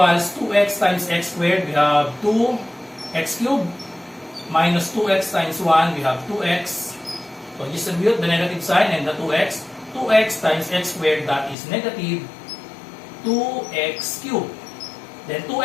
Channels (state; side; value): drops out; right; at 11.6 s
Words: 2x times x squared. We have 2x cubed minus 2x times 1, we have 2x. So distribute the negative sign and the 2x. 2x times x squared, that is negative 2x cubed. Then